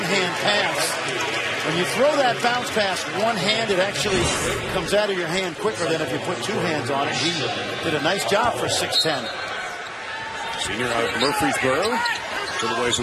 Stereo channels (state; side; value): identical; both; correlation 1.00